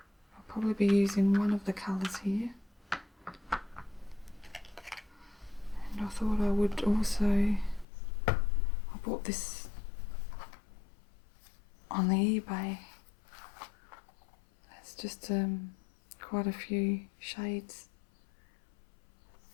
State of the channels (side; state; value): right; drops out; at 7.9 s